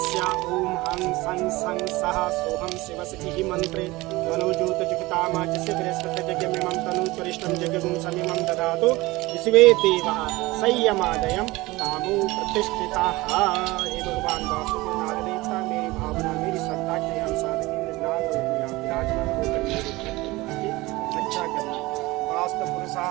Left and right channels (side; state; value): left; quieter; 20.8 dB